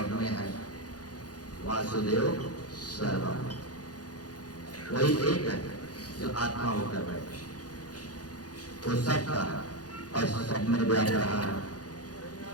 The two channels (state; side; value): late; right; 0.68 ms